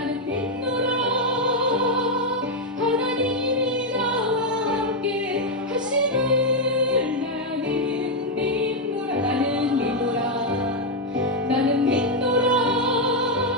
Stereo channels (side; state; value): both; normal; correlation 0.01